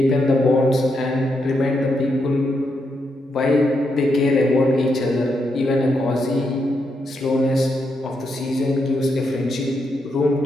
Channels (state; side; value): normal; both; correlation 0.81